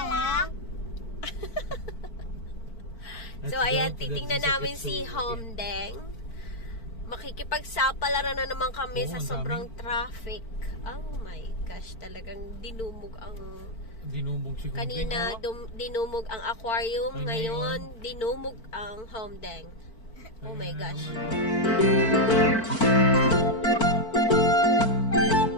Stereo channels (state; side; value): late; right; 4.5 ms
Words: So, ayan, titingnan namin si Homdeng. Makikipagsapalaran na naman kami sa sobrang traffic. Oh my gosh, talagang dinumog si Homdeng. Kanina, dinumog ang aquarium. Ngayon, dinumog ang Homdeng. Oh my gosh.